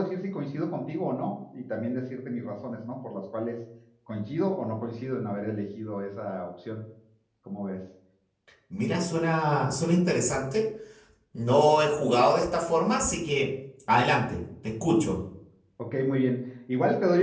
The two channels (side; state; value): both; identical; correlation 1.00